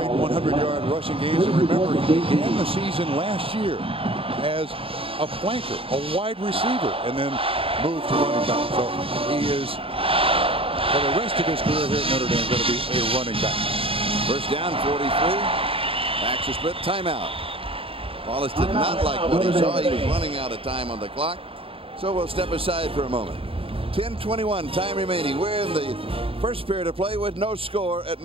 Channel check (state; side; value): late; left; 0.27 ms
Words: 100-yard rushing games. And remember, he began the season last year as a flanker, a wide receiver, and then moved to running back. So he is, for the rest of his career here at Notre Dame, going to be a running back. First down, 43. Backs a split, timeout. Wallace did not like what he saw. He was running out of time on the clock. So we'll step aside for a moment. 10:21 time remaining. We're in the first period of play with no score at